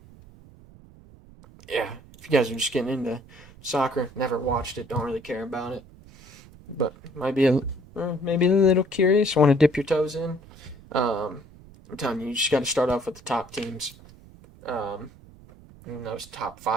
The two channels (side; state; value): right; noise; rumble, 22 dB below the sound